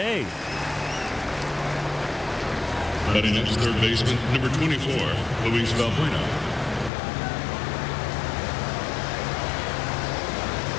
Batting next, third baseman, number 24, Luis Valbuena.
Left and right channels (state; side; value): drops out; right; at 6.9 s